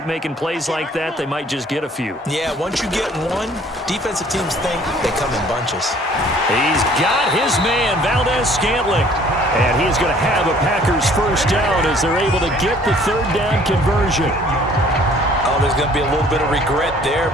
making plays like that, they might just get a few. Yeah, once you get one, defensive teams think they come in bunches. He's got his man, Valdez-Scantling. And he's going to have a Packers first down as they're able to get the third down conversion. Oh, there's going to be a little bit of regret there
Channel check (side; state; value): both; normal; correlation 0.56